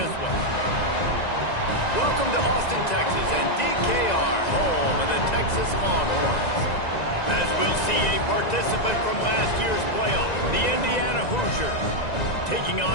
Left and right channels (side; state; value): right; late; 1.9 ms